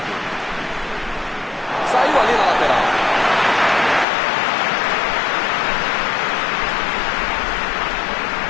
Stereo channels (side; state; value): right; drops out; at 4.0 s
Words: Saiu ali na lateral.